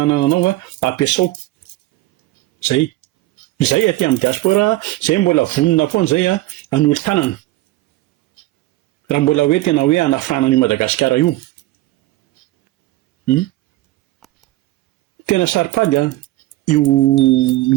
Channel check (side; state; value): left; quieter; 17.2 dB